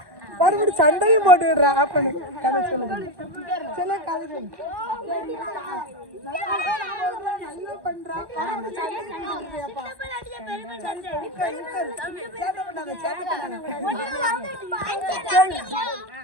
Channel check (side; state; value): left; late; 1.1 ms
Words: மறுபடியும் சண்டையும் போட்டுக்கிடுறா. அப்பனு கதை சொல்லுங்க. சொல்ல கதை சொல்லு. நல்லா பண்றா. கதை